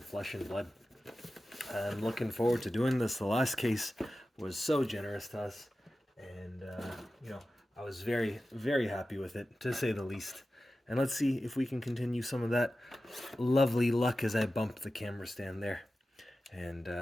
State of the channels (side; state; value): both; normal; correlation 0.94